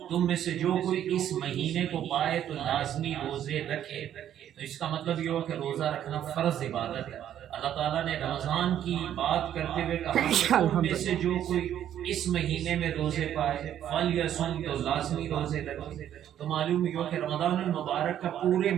تم میں سے جو کوئی اس مہینے کو پائے تو لازمی روزے رکھے۔ تو اس کا مطلب یہ ہو کہ روزہ رکھنا فرض عبادت ہے۔ اللہ تعالیٰ نے رمضان کی بات کرتے ہوئے کہا کہ تم میں سے جو کوئی اس مہینے میں روزے پائے فلیصم، تو لازمی روزے رکھے۔ تو معلوم ہوا کہ رمضان المبارک کا پورے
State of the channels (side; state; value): left; quieter; 10.7 dB